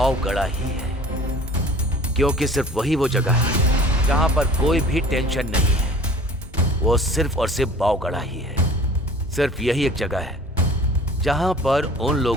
ही है, क्योंकि सिर्फ वही वो जगह है जहां पर कोई भी टेंशन नहीं है। वो सिर्फ और सिर्फ बावगढ़ा ही है। सिर्फ यही एक जगह है जहां पर उन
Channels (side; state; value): both; normal; correlation 0.46